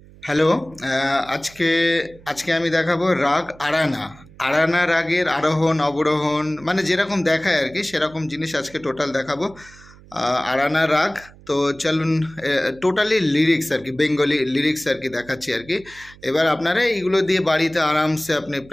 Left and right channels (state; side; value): noise; right; hum, 23 dB below the sound